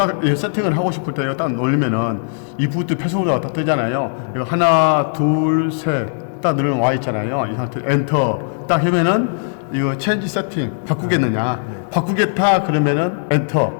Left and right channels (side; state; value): right; silent; digital silence